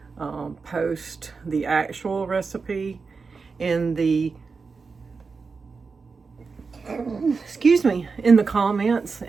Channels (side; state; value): left; quieter; 4.7 dB